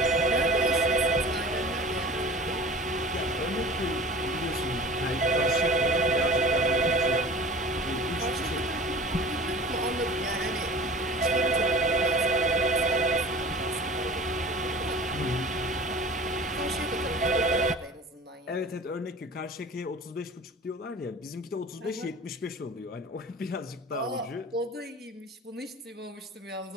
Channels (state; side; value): normal; both; correlation 0.40